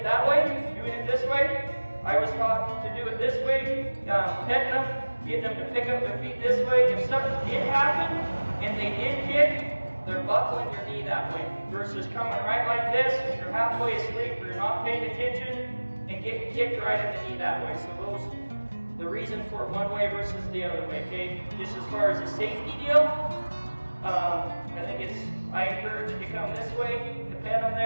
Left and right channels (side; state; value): both; inverted; correlation -1.00